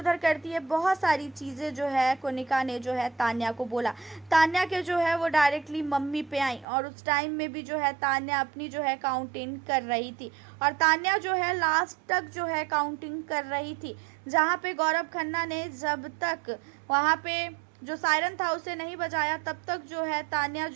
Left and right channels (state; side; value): drops out; left; at 6.7 s